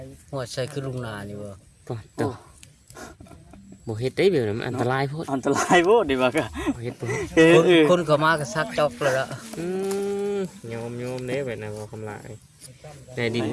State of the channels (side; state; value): both; identical; correlation 1.00